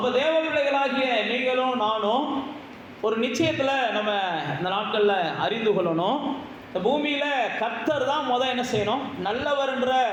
தேவ பிள்ளைகளாகிய நீங்களும் நானும் ஒரு நிச்சயத்தில் நம்ம இந்த நாட்களில் அறிந்து கொள்ளணும். இந்த பூமியில் கர்த்தர் தான் என்ன செய்யணும்? நல்லவர்ன்ற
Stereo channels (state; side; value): identical; both; correlation 1.00